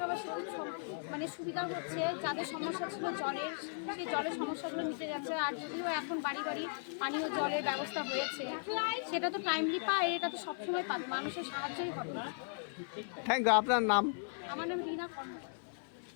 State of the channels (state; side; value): silent; right; 53 dB below the other